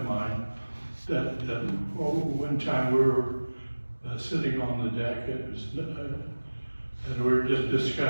mine that one time we were sitting on the deck. And we were just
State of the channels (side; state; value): both; inverted; correlation -1.00